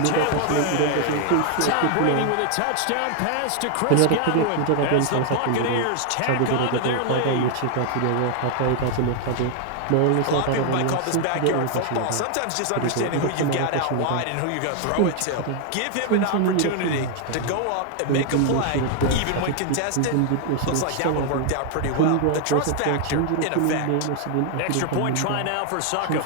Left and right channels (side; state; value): both; different; correlation 0.00